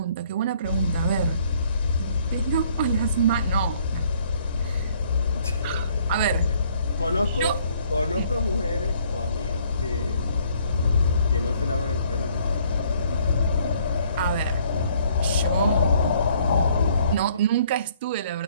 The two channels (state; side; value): inverted; both; correlation -0.62